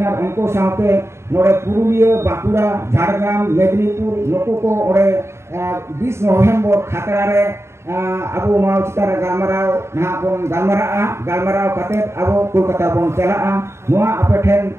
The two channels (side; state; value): left; late; 0.13 ms